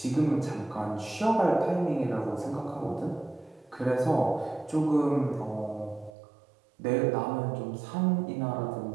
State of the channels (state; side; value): drops out; left; at 6.1 s